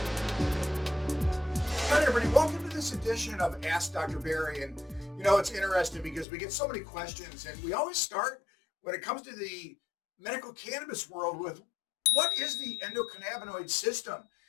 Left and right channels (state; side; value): drops out; right; at 6.2 s